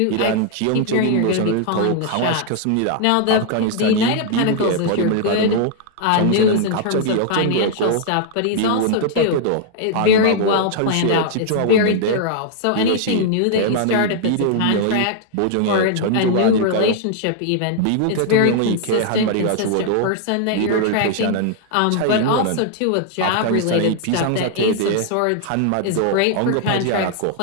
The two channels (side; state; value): both; different; correlation -0.01